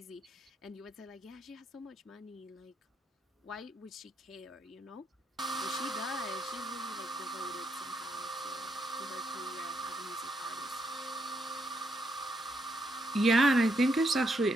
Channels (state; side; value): normal; both; correlation 0.78